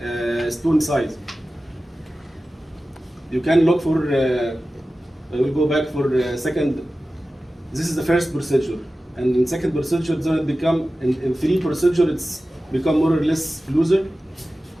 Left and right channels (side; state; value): both; normal; correlation 0.95